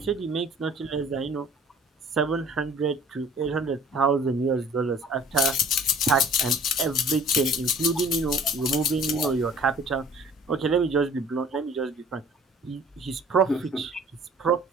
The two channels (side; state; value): both; normal; correlation 0.51